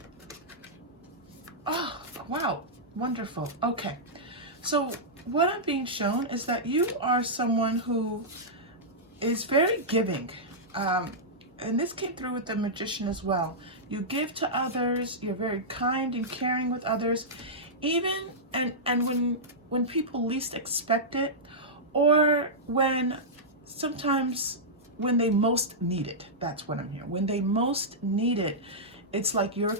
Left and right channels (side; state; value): both; normal; correlation -0.12